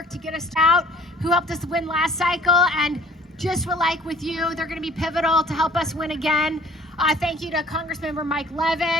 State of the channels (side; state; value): both; normal; correlation 0.53